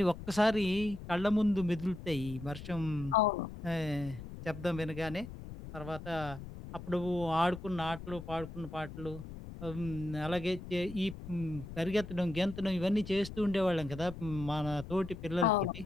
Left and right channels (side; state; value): left; noise; rumble, 12 dB below the sound